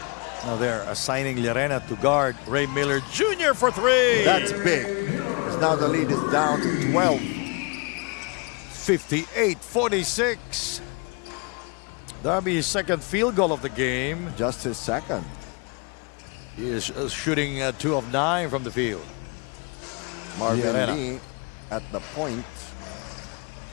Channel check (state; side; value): quieter; right; 32.5 dB